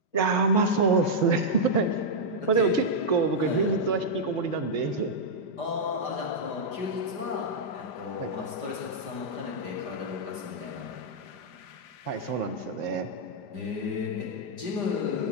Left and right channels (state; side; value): late; right; 5.0 ms